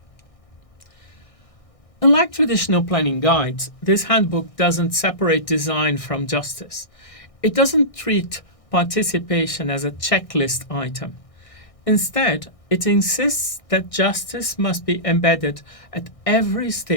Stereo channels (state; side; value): late; right; 1.6 ms